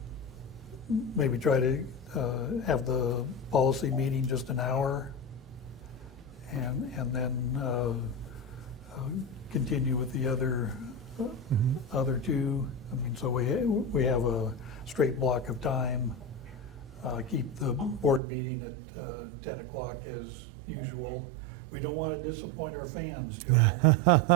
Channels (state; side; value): drops out; left; at 18.2 s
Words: maybe try to have the policy meeting just an hour, and then continue with the other two. I mean, so we have a straight block of time. Keep the board meeting at 10 o'clock as usual. We don't want to disappoint our fans, Joe. Come